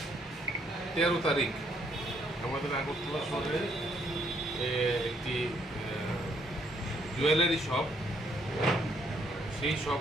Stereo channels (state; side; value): normal; both; correlation 0.70